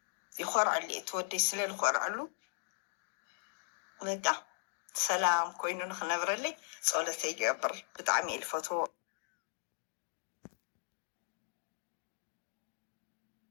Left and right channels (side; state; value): right; silent; digital silence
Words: ይኮርዐሉ እየ ትወደይ ስለዝኮርዐሉ በቃ ሰላም ኮይኑ ንክነብረለይ ፀሎተይ ይገብር ብጣዕሚ እየ ዝፈትዎ።